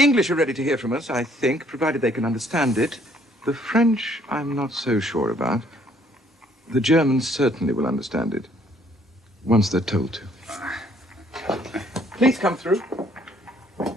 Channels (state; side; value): normal; both; correlation 0.63